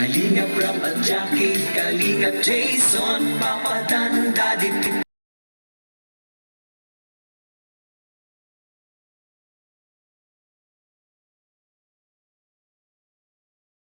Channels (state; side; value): inverted; both; correlation -1.00